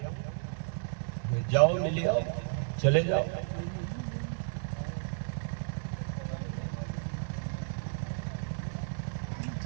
جاؤ مل آؤ, چلے جاؤ.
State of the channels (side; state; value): left; silent; 56 dB below the other